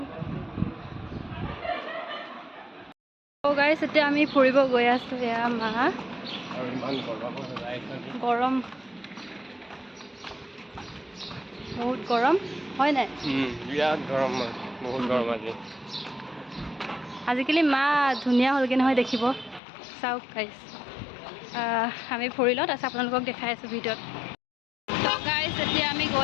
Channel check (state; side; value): drops out; right; at 19.6 s